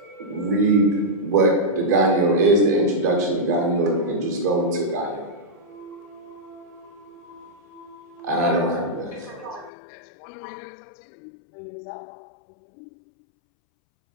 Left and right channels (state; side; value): drops out; right; at 9.7 s